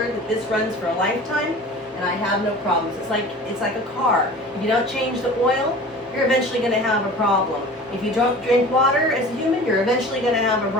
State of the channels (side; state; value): both; normal; correlation 0.40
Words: that this runs for a lifetime and I have no problems. It's like a car. If you don't change the oil, you're eventually going to have a problem. If you don't drink water as a human, you're eventually going to have a